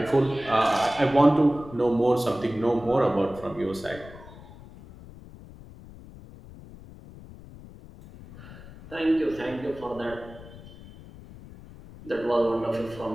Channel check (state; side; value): noise; left; rumble, 18 dB below the sound